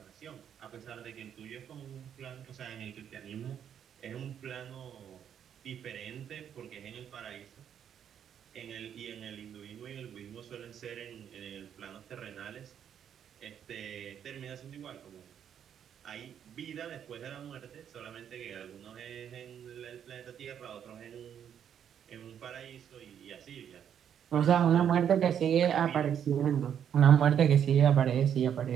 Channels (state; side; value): quieter; left; 8.9 dB